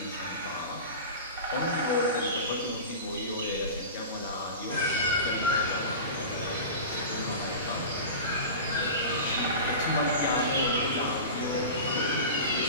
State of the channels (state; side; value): inverted; both; correlation -0.31